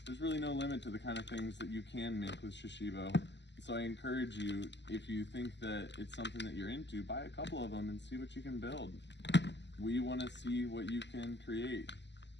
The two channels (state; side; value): late; right; 0.51 ms